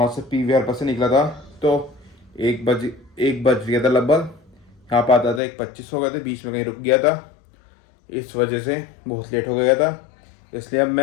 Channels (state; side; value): drops out; right; at 5.4 s